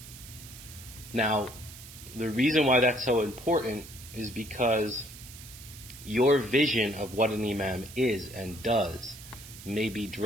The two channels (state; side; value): noise; right; hiss, 16 dB below the sound